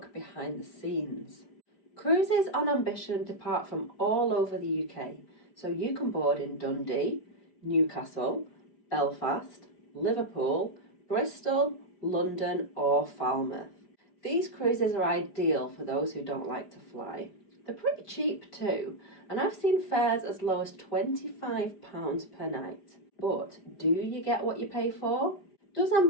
behind the scenes. Cruises on Ambition depart from all over the UK, so you can board in Dundee, Newcastle, Belfast, Liverpool, Bristol, London, or Falmouth. These cruises are ideal for those who don't like to fly. They're pretty cheap too, and I've seen fares as low as £25 per night. But do you get what you pay for? Does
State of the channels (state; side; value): late; right; 5.0 ms